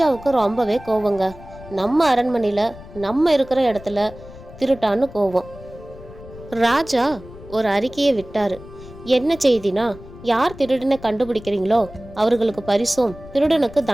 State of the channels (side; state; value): left; noise; rumble, 17 dB below the sound